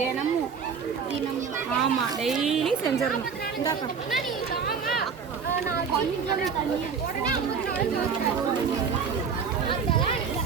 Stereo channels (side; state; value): left; quieter; 6.1 dB